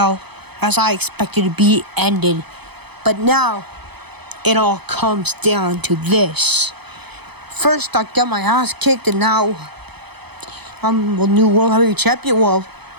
as I expected to be ended. But now it all comes down to this. First I got my ass kicked, and now I'm the new World Heavyweight Champion. Well,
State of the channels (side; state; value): left; late; 0.98 ms